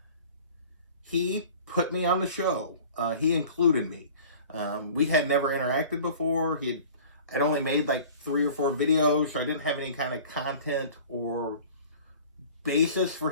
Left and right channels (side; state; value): both; inverted; correlation -0.44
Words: he put me on the show. He included me. We had never interacted before. I'd only made like 3 or 4 videos, so I didn't have any kind of content or basis for